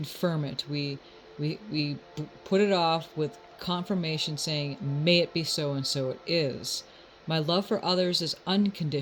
it. We put it off with confirmation saying, may it be so, and so it is. My love for others is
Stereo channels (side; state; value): both; identical; correlation 1.00